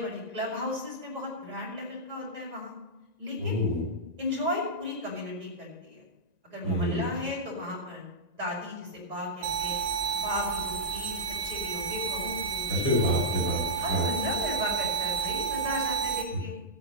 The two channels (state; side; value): late; left; 1.9 ms